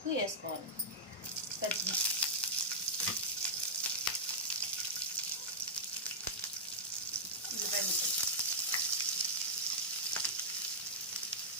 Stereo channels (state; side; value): normal; both; correlation -0.09